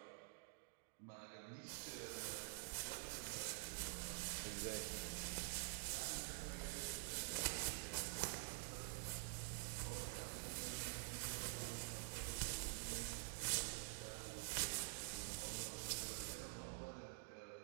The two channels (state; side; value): silent; left; digital silence